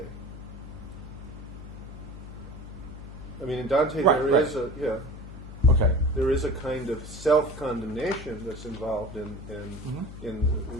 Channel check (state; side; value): noise; left; hum, 12 dB below the sound